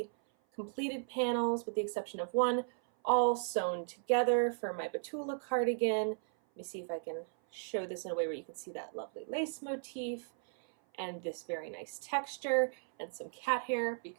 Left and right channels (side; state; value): left; silent; 54 dB below the other